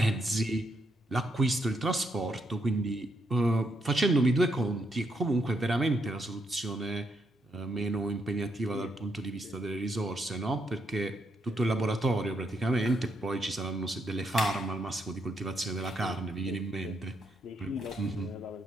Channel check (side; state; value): both; normal; correlation 0.78